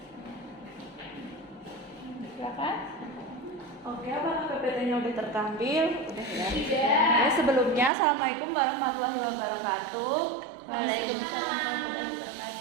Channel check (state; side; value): drops out; left; at 7.9 s